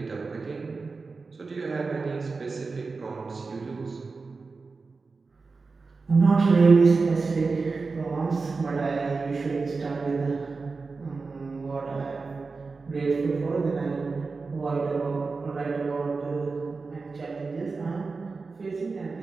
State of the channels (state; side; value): quieter; left; 4.2 dB